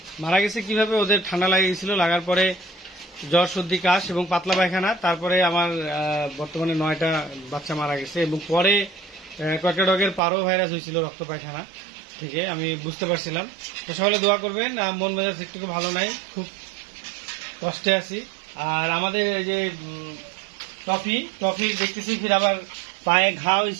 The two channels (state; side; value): drops out; left; at 10.2 s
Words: গেছে কিভাবে? ওদের ঠান্ডা লাগে গেছিল, লাগার পরে জ্বর, সর্দি, কাশ এবং পাতলা পায়খানা। তারপরে আমার বর্তমানে 9টা বাচ্চা মারা গেছে এবং পরে কয়েকটা ডগের পারো ভাইরাস হয়েছিল রক্ত পায়খানা থেকে, আমি বুঝতে পারছিলাম। তো সকলে দোয়া করবেন। মন মেজাজ একটু ভালো নাই, খুব কষ্টে আছি। আর আমাদের এই যে টফির দেখতেছি ফির আবার পায়ে ঘা